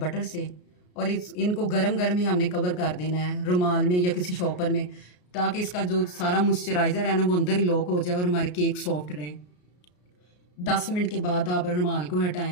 से और इनको गरम गरम ही हमने कवर कर देना है रुमाल में या किसी शॉपर में ताकि इसका जो सारा मॉइस्चराइज़र है ना वो अंदर ही लॉक हो जाए और हमारे केक सॉफ्ट रहें। 10 मिनट के बाद आप रुमाल को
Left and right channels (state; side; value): late; right; 33 ms